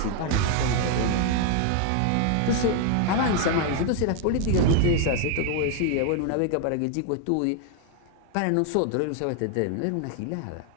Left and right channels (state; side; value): different; both; correlation 0.00